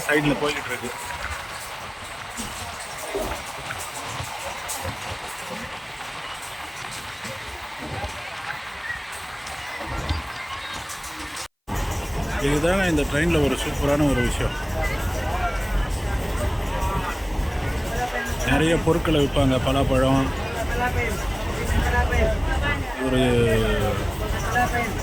சைடில் போய்கிட்டு இருக்கு. இதுதாங்க இந்த ட்ரெயினில் ஒரு சூப்பரான ஒரு விஷயம். நிறைய பொருட்களை விற்பாங்க. பலாப்பழம், ஒரு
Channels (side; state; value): both; identical; correlation 1.00